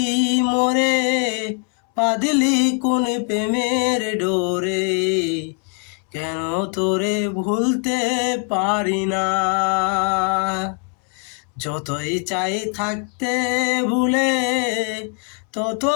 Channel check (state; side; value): quieter; right; 37.0 dB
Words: মোরে, বাঁধলি কোন প্রেমের ডোরে, কেন তোরে ভুলতে পারি না। যতই চাই থাকতে ভুলে,